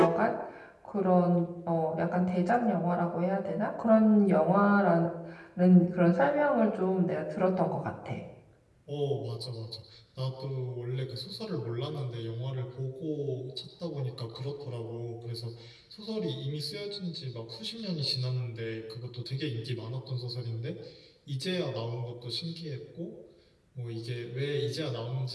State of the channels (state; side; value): identical; both; correlation 1.00